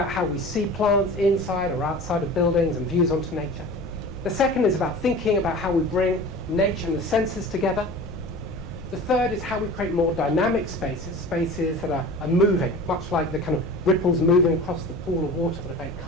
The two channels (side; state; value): left; noise; rumble, 17 dB below the sound